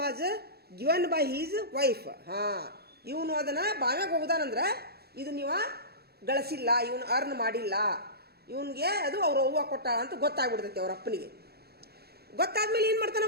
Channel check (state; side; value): late; left; 0.46 ms